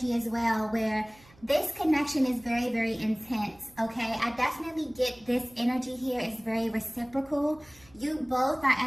as well, where this connection is very intense. Okay, I definitely get this energy here is very reciprocal. You both are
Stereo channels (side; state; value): right; noise; hum, 27 dB below the sound